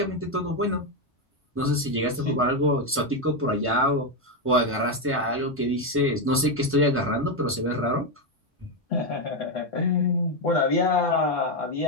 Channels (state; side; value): normal; both; correlation 0.06